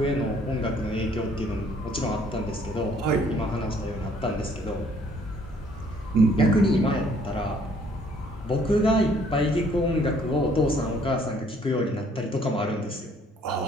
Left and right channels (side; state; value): both; normal; correlation 0.62